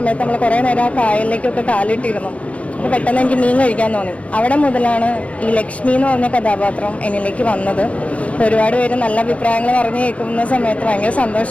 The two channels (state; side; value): late; right; 0.064 ms